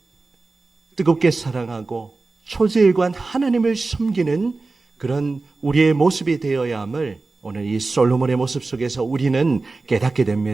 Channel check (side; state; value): left; quieter; 3.6 dB